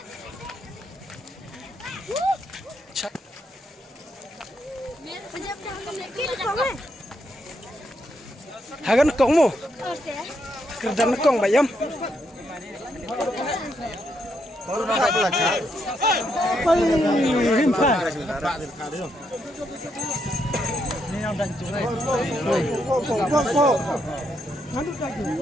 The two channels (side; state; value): both; normal; correlation 0.78